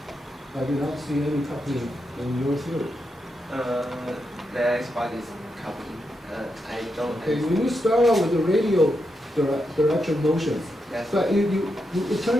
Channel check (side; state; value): both; normal; correlation 0.84